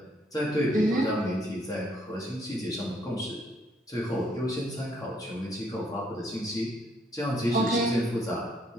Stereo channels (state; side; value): normal; both; correlation 0.68